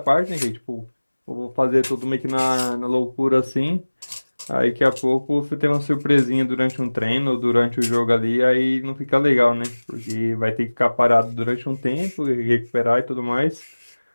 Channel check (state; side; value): inverted; both; correlation -1.00